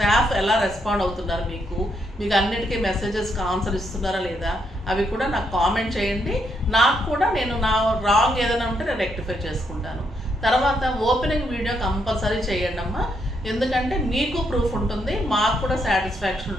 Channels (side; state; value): both; normal; correlation 0.76